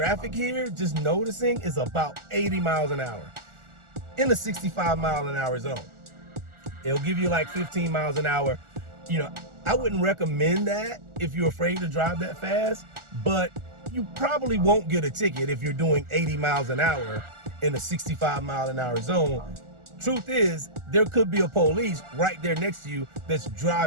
here, just noticing, is about 80 miles an hour in a 65-mile-an-hour zone. It'll give you like 15 miles an hour. You know, I wouldn't recommend that if you're afraid to drive that fast, but you probably won't get a ticket if you're doing 80 miles an hour in a 65-mile-an-hour zone. Truth is, there could be a police right there next to you that's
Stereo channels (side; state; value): left; late; 1.4 ms